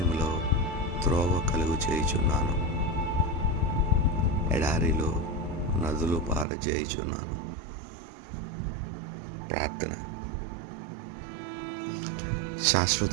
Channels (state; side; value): drops out; left; at 6.5 s